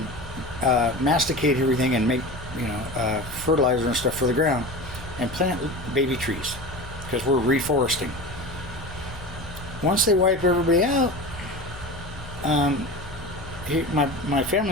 masticate everything and make, fertilizer and stuff for the ground and plant baby trees because we're reforesting. Once they wipe everybody out, my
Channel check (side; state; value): left; noise; hum, 16 dB below the sound